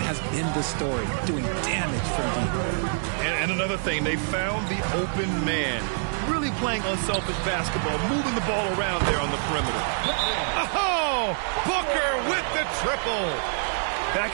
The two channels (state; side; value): silent; left; digital silence